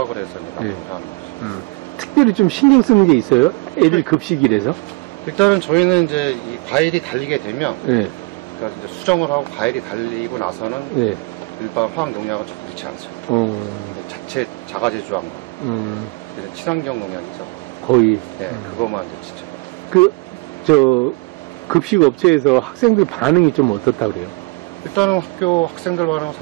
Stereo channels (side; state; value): left; quieter; 26.3 dB